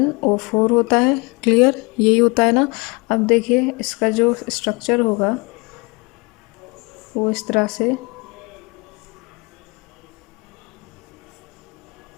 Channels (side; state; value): right; quieter; 28.2 dB